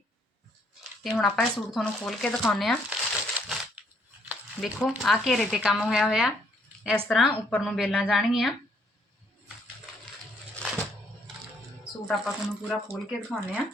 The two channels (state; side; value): normal; both; correlation 0.68